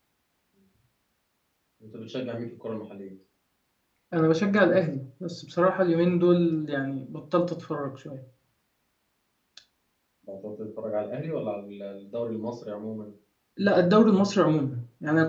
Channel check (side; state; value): both; identical; correlation 1.00